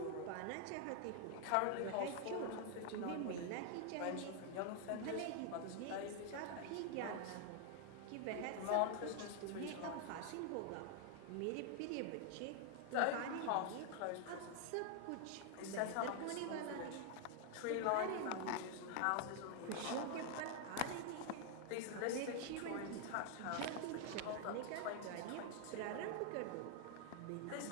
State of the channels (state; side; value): different; both; correlation 0.00